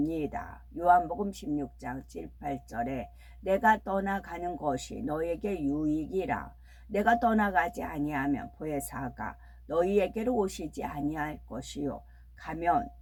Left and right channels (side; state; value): both; identical; correlation 1.00